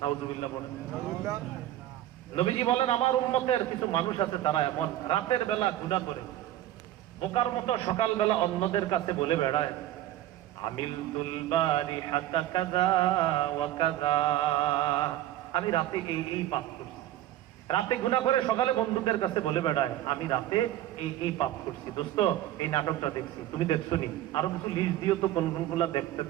নাউজুবিল্লাহ বলেন। নবীজি বলেন আমার উম্মতের কিছু মানুষ আছে তারা এমন রাতের বেলা গুনাহ করে বোকার মতো সকালবেলা অন্যদের কাছে বলে বেড়ায় আমিলতুল বারিহাতা কাযা ওয়া কাযা, আমি রাতে এই পাপ করছি। রাতে গুনাহ করে সকালে বন্ধুদের কাছে বলে বেড়ায় আমি রাতে এই পাপ করছি। দোস্ত এই নাটকটা দেখছি, তুমি দেখছো নি? আরো কিছু লিস্ট দিও তো কোন কোনগুলা দেখতে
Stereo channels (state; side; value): quieter; left; 13.4 dB